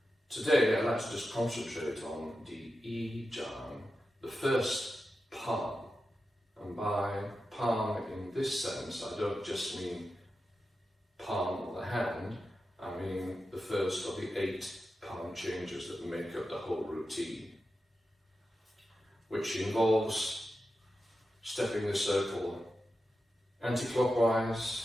Today I'd like to just concentrate on the Jiang, the first palm. And by palm in this sense, I don't just mean palm of the hand, I mean the first of the 8 palm changes that make up the whole routine, which involves stepping the circle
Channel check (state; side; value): normal; both; correlation 0.91